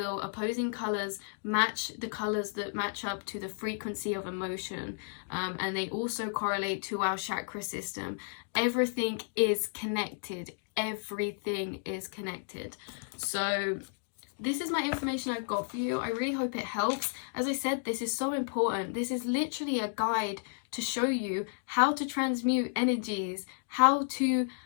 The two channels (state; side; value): silent; right; digital silence